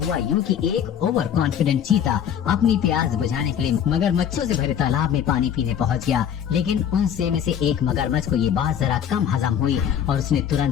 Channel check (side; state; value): right; quieter; 9.0 dB